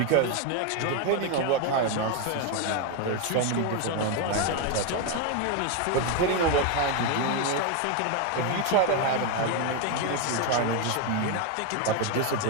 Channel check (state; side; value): different; both; correlation 0.02